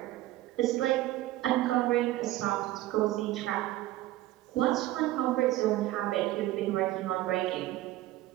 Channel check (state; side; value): quieter; left; 15.9 dB